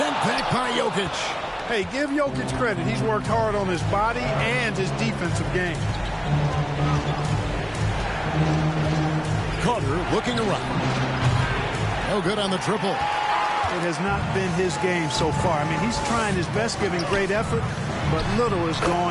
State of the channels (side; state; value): both; identical; correlation 1.00